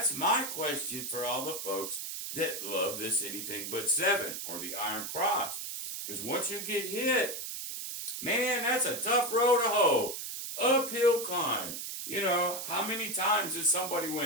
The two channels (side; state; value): right; noise; hiss, 6 dB below the sound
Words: my question for all the folks that love this anything but 7 or the Iron Cross. Because once you get hit, man, that's a tough road to hoe. Uphill climb. You know, how many times did somebody